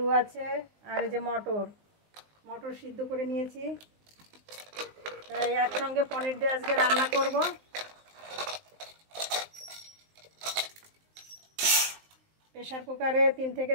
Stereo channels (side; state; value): left; late; 19 ms